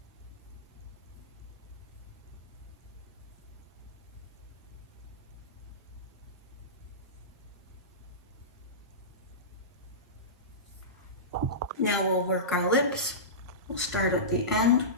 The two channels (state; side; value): normal; both; correlation -0.20